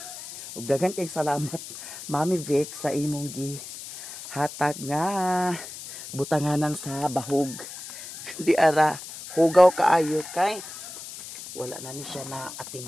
Ug daghan kay salamat Mami Vic sa imong hatag nga butanganan sa bahog. Di ara hugaw kaayo kay wala na ni siya na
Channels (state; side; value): noise; left; hiss, 12 dB below the sound